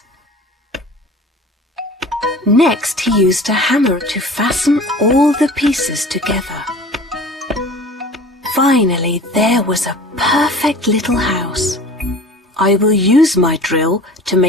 Next, he used a hammer to fasten all the pieces together. Finally, there was a perfect little house. I will use my drill to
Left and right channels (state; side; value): normal; both; correlation 0.41